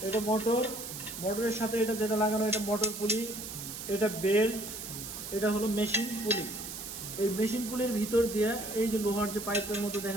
এটা মোটরের সাথে এটা যেটা লাগানো এটা মোটর পুলি, এটা বেল্ট, এটা হলো মেশিন পুলি। এই মেশিন পুলির ভিতর দিয়ে এই যে লোহার যে পাইপের মতো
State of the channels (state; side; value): noise; right; hiss, 8 dB below the sound